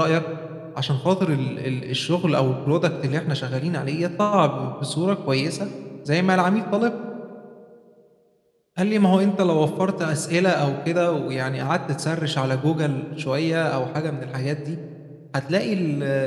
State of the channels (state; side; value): identical; both; correlation 1.00